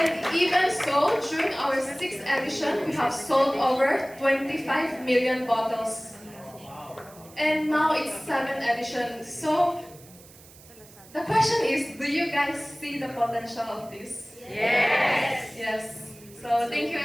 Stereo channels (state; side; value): noise; right; hiss, 22 dB below the sound